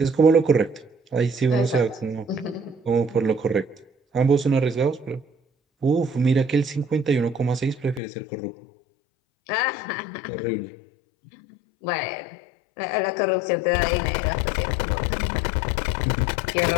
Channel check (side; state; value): right; drops out; at 8.0 s